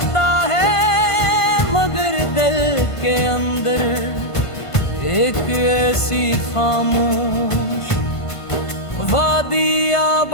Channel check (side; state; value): right; late; 1.5 ms